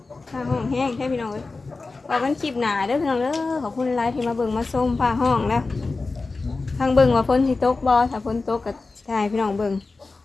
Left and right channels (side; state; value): right; quieter; 3.8 dB